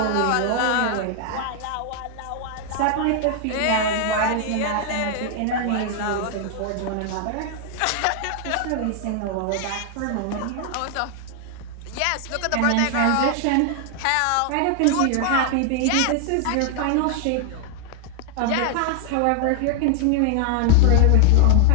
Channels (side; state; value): both; different; correlation 0.00